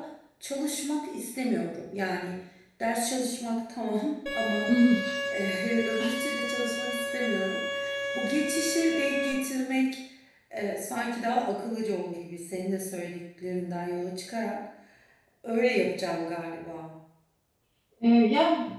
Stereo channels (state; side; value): identical; both; correlation 1.00